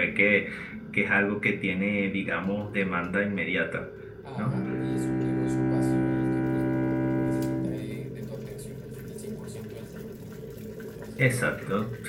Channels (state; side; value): identical; both; correlation 1.00